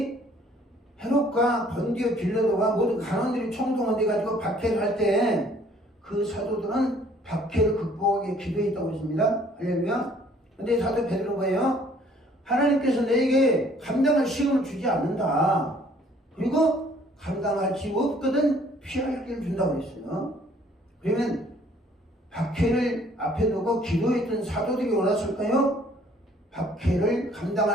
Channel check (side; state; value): both; normal; correlation 0.59